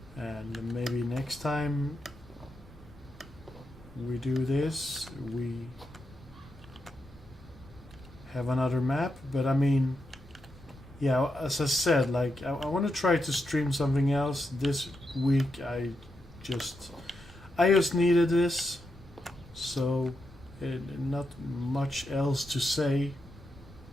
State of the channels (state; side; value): normal; both; correlation 0.85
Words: and maybe next time we do this, we have another map. But I mean, yeah, as I said, like I want to try to stream something else this week. I just needed this, so not much else to say.